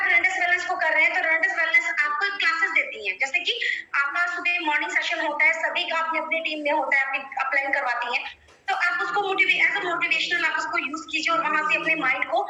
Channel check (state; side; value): identical; both; correlation 1.00